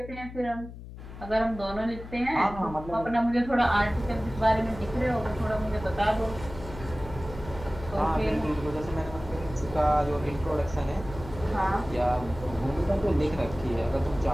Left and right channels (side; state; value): left; noise; hum, 13 dB below the sound